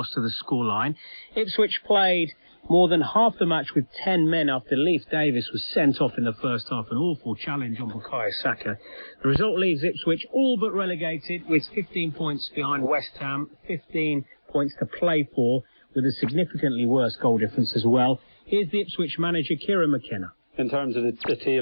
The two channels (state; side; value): inverted; both; correlation -1.00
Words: to the scoreline. Ipswich played more than half the match with 10 men after Leif Davis was sent off in the first half, an awful challenge on Bukayo Saka. The result leaves Ipswich all but relegated, with 15 points behind West Ham, 15 points to play for, with a significantly worse goal difference as well. Here's the Ipswich manager, Kieran McKenna. In terms of the